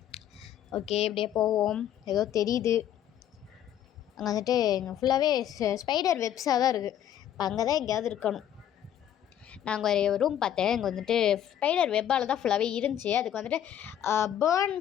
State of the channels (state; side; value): quieter; right; 10.6 dB